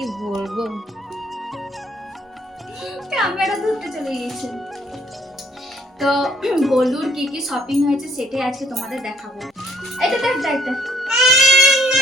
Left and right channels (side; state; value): both; normal; correlation 0.63